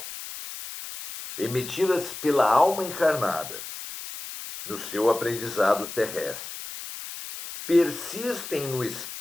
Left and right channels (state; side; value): noise; left; hiss, 10 dB below the sound